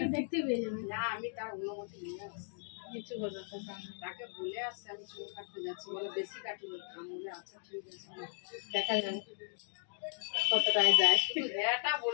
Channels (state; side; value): silent; right; 53 dB below the other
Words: দেখতে পেয়ে যাবে। না আমি তার অনুমতি নিয়ে আসছি, কিছু বোঝাতে তাকে বলে আসছে আমি চুল কাটতে যাচ্ছি, বলে বেশি কাটি বলে আচ্ছা ঠিক আছে দেখা যাবে কতটায় যায়। এটা